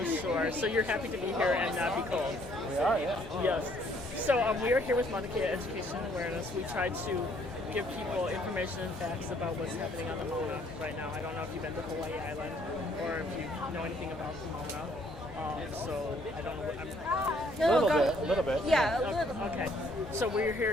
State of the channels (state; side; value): normal; both; correlation 0.64